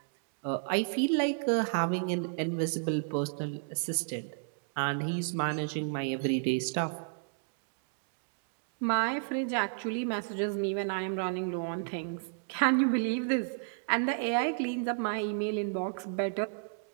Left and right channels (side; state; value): left; silent; digital silence